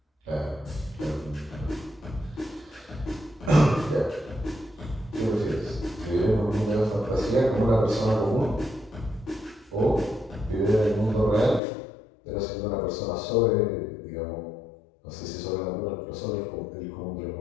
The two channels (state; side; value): drops out; right; at 11.6 s